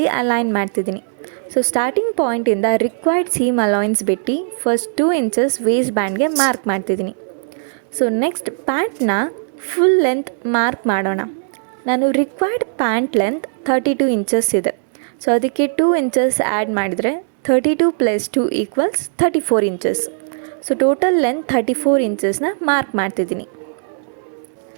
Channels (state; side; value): silent; left; digital silence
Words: ಅಲೈನ್ ಮಾಡ್ತಿದ್ದೀನಿ. ಸೊ ಸ್ಟಾರ್ಟಿಂಗ್ ಪಾಯಿಂಟಿಂದ ರಿಕ್ವೈರ್ಡ್ ಸೀಮ್ ಅಲೈನ್ಸ್ ಬಿಟ್ಟು ಫಸ್ಟ್ 2 ಇಂಚಸ್ ವೇಸ್ಟ್ ಬ್ಯಾಂಡ್ಗೆ ಮಾರ್ಕ್ ಮಾಡ್ತಿದ್ದೀನಿ. ಸೊ ನೆಕ್ಸ್ಟ್ ಪ್ಯಾಂಟ್ನ ಫುಲ್ ಲೆಂತ್ ಮಾರ್ಕ್ ಮಾಡೋಣ. ನಾನು ರಿಕ್ವೈರ್ಡ್ ಪ್ಯಾಂಟ್ ಲೆಂತ್ 32 ಇಂಚಸ್ ಇದೆ. ಸೊ ಅದಕ್ಕೆ 2 ಇಂಚಸ್ ಆ್ಯಡ್ ಮಾಡಿದರೆ 32 + 2 = 34 ಇಂಚಸ್. ಸೊ ಟೋಟಲ್ ಲೆಂತ್ 34 ಇಂಚಸ್ನ ಮಾರ್ಕ್ ಮಾಡ್ತಿದ್ದೀನಿ.